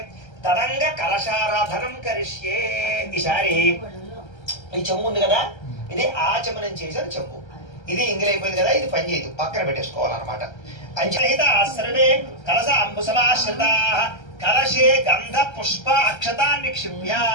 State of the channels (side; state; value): right; late; 1.3 ms